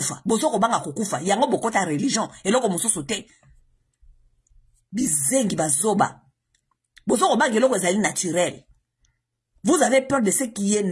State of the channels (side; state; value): both; identical; correlation 1.00